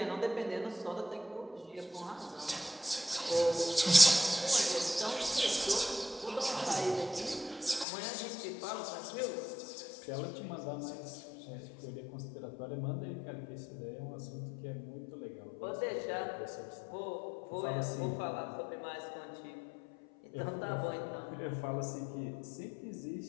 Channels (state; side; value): drops out; right; at 7.9 s